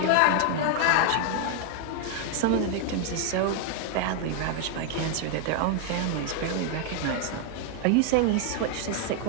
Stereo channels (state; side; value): different; both; correlation 0.00